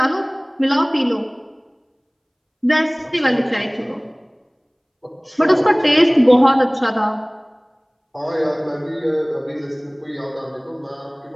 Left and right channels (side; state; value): both; identical; correlation 1.00